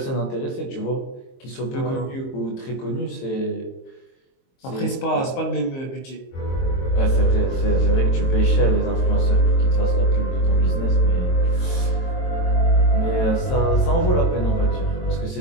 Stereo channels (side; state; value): right; late; 22 ms